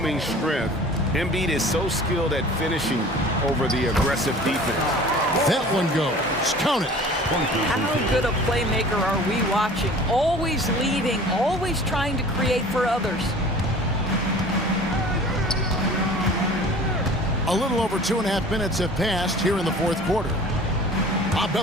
strength. Embiid is so skilled at finishing over the aggressive defense. That one goes. Count it. How good a playmaker are we watching? Always leading, always trying to create for others. A little over 2.5 minutes have passed here in the fourth quarter. Popped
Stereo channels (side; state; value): both; normal; correlation 0.45